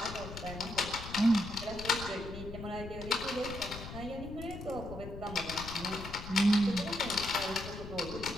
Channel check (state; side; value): noise; left; rumble, 10 dB below the sound